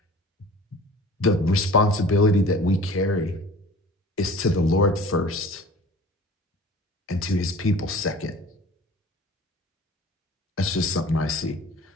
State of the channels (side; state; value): both; normal; correlation 0.44